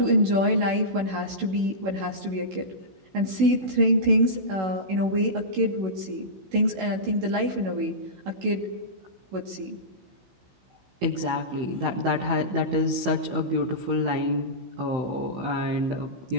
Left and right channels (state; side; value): late; left; 16 ms